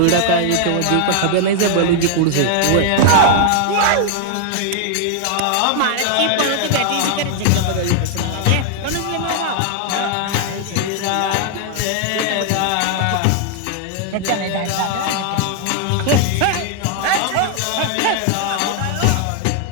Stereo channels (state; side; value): different; both; correlation 0.00